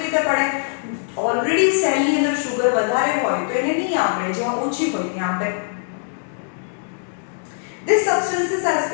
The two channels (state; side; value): silent; right; digital silence